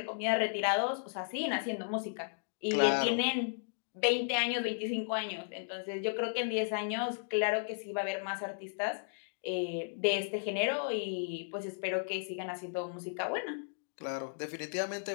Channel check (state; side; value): silent; right; digital silence